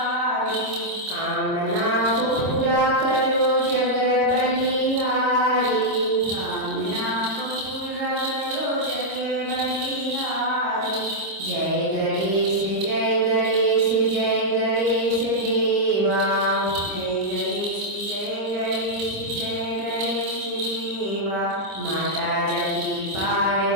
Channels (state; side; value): late; left; 26 ms